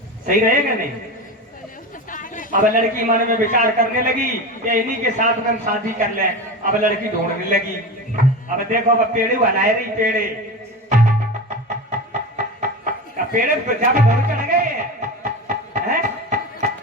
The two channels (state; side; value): normal; both; correlation 0.26